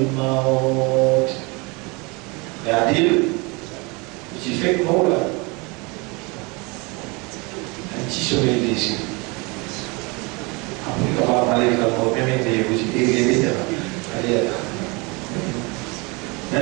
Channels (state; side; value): quieter; left; 28.1 dB